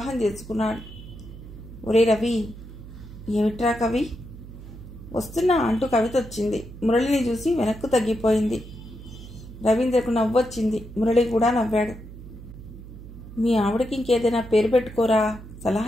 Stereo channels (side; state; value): right; noise; hum, 15 dB below the sound